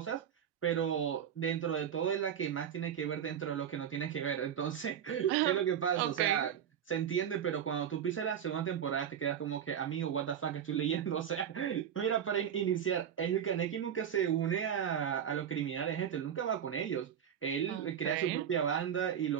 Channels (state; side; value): quieter; left; 8.9 dB